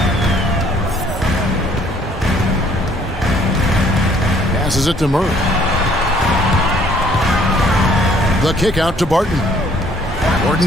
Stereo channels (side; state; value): both; normal; correlation 0.61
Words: Passes it to Murray. The kick out to Barton.